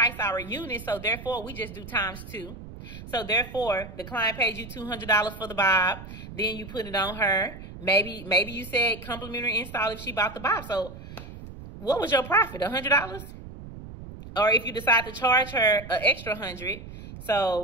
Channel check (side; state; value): right; noise; rumble, 13 dB below the sound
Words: our units. So therefore, we just do ×2. So therefore, the client pays you $200 for the bob. Then you put it on her. Maybe you said complimentary install if she bought the bob. So what was your profit? $100? Or if you decide to charge her an extra $100.